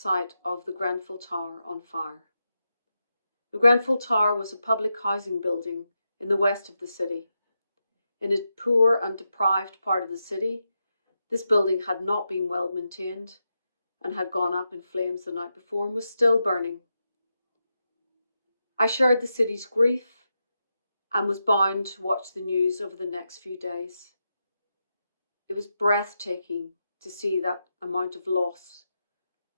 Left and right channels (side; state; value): both; inverted; correlation -0.87